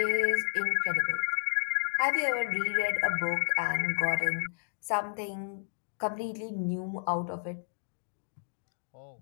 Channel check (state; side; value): silent; right; digital silence